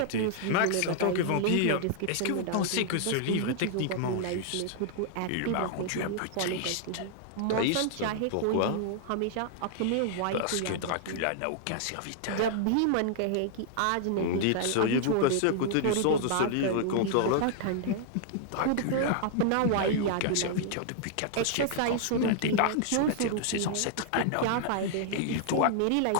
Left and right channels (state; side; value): different; both; correlation 0.00